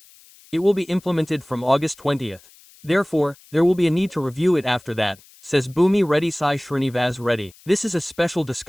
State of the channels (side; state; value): left; noise; hiss, 26 dB below the sound